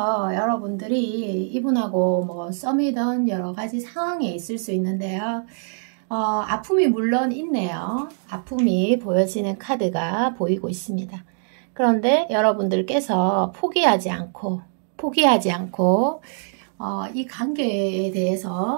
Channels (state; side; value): silent; left; digital silence